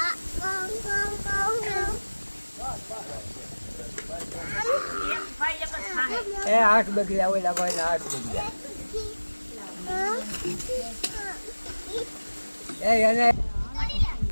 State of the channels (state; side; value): inverted; both; correlation -1.00